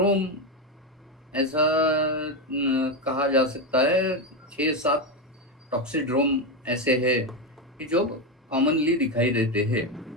ऐसा कहा जा सकता है, 6-7 टॉक्सिड्रोम ऐसे है कि जो कॉमनली दिखाई देते हैं।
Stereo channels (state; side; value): normal; both; correlation 0.11